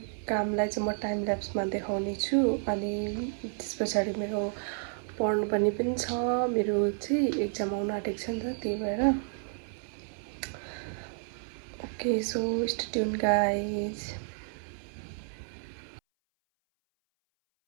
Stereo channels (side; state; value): left; silent; 57 dB below the other